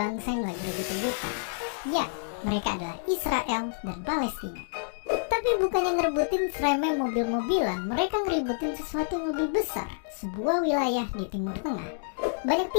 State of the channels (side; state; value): right; silent; digital silence